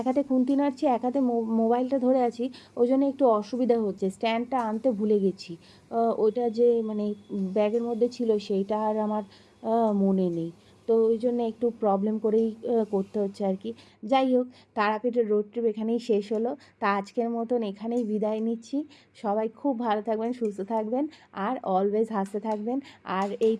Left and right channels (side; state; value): both; identical; correlation 1.00